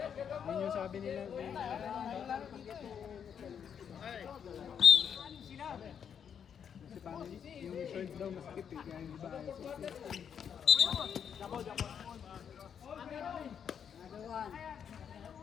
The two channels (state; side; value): quieter; right; 7.9 dB